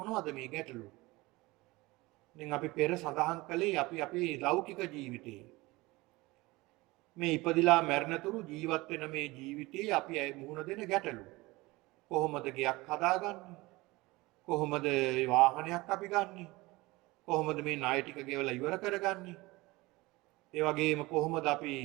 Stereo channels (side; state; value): left; quieter; 21.6 dB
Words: මේ ගැටලු? දැන් අපි පෙර සඳහන් කළේ අපි අපේ ලෞකික ජීවිතේ මේ ඉපදිලා මැරෙනතුරු ජීවත් වෙන මේ ජීවිතේ අපි මුහුණ දෙන ගැටලු. කොහොමද ගෙයක් හදාගන්නේ? කොහොමද වාහනයක් අපි ගන්නෙ? කොහොමද මේ ණය ටික ගෙවලා ඉවර කරගන්නේ? ඒ වගේම කොහොමද අපි